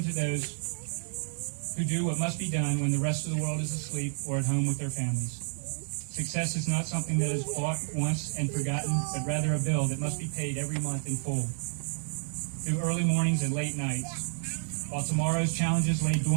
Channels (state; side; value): silent; left; digital silence